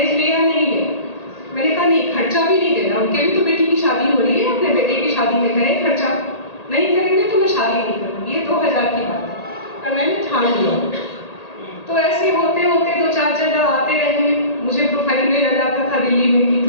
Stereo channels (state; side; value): late; right; 1.8 ms